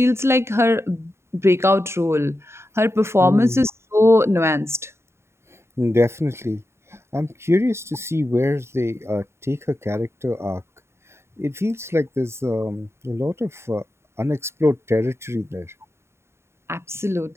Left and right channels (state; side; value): late; left; 0.13 ms